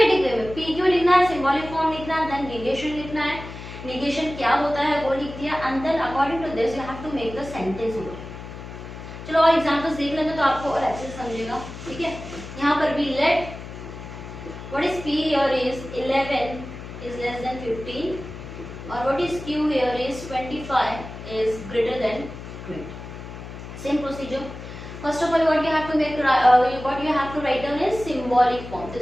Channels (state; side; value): noise; left; hum, 12 dB below the sound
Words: way में पी क्यू लिखना है, सिंबॉलिक फॉर्म लिखना है, देन negation लिखना है, negation क्या होता है वो लिख दिया, and then according to this you have to make the sentence over. चलो और एग्जांपल्स देख लेते तो आपको और अच्छे से समझेगा, ठीक है। यहाँ पर भी let what is p here is 11 is less than 15, or what is q here is 25 is greater than 20. Same procedure. First of all, what you have to make, what you have to write down is symbolic form. तो